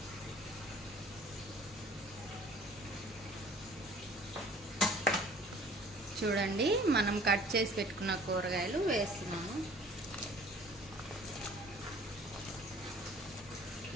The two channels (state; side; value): normal; both; correlation 0.51